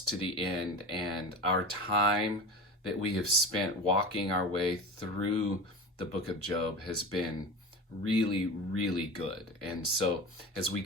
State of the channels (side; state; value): both; normal; correlation 0.29